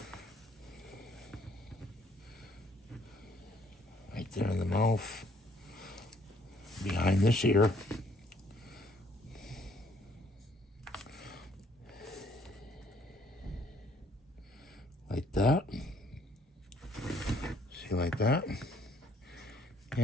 Right there in the mouth, behind this ear. Like that. See, like that.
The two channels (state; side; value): normal; both; correlation 0.64